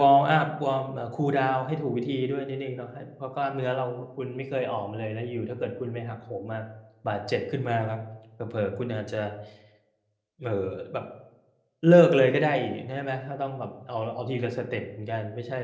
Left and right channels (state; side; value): identical; both; correlation 1.00